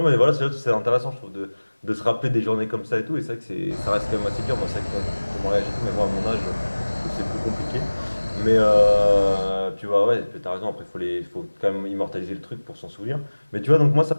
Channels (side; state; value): both; inverted; correlation -1.00